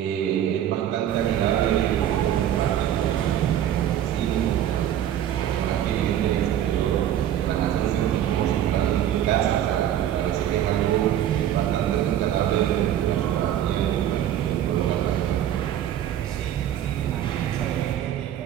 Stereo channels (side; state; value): left; quieter; 11.1 dB